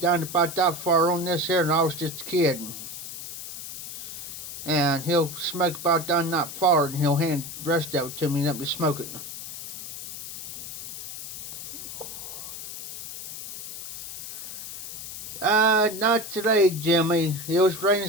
down to about that far on this here, and I was just a kid. And he'll smoke about down that far, and he'll hand the rest of it to me and let me smoke it. Not today, Jimmy. It was raining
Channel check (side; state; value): left; noise; hiss, 9 dB below the sound